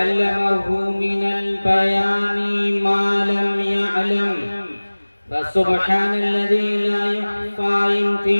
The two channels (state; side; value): inverted; both; correlation -1.00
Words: من البيان ما لم يعلم، فسبحان الذي لا يخفى